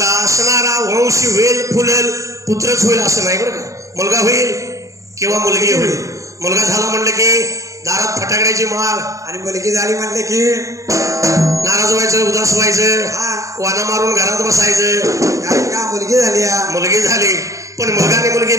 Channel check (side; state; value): left; late; 0.16 ms